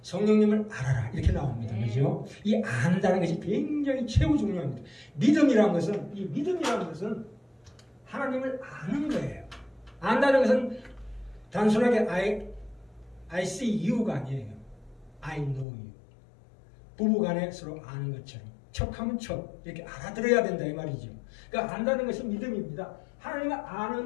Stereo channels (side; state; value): right; drops out; at 15.7 s